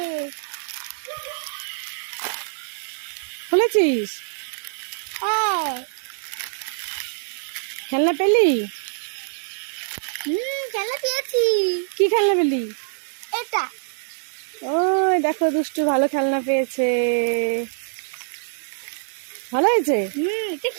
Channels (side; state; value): left; silent; digital silence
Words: খুলেছিস? হ্যাঁ। খেলনা পেলি? খেলনা পেয়েছি। কি খেলনা পেলি? এটা। ওই দেখো, দুষ্টু ভালো খেলনা পেয়েছে। ভালো হয়েছে? এটা